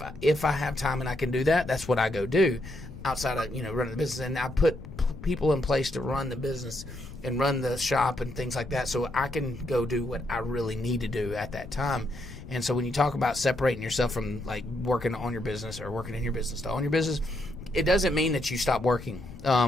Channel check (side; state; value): left; noise; rumble, 14 dB below the sound